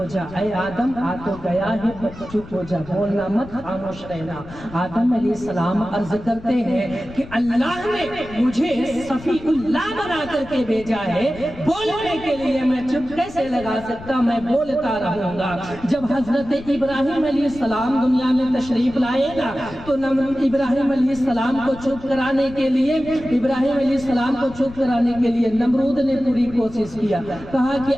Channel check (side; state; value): left; noise; rumble, 17 dB below the sound